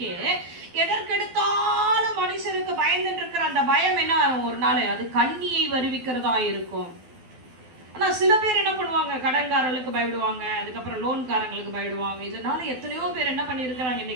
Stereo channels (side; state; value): left; late; 12 ms